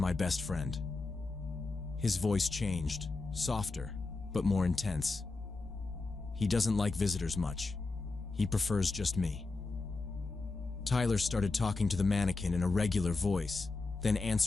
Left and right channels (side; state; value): right; quieter; 3.6 dB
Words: best friend." His voice changed, softer, but more intense. "He doesn't like visitors much. He prefers just me." Tyler started talking to the mannequin in a regular voice, then